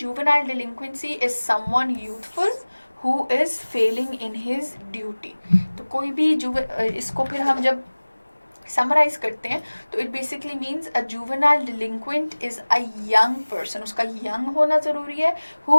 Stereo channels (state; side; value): inverted; both; correlation -1.00